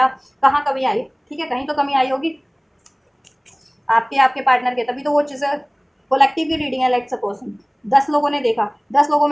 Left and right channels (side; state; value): both; identical; correlation 1.00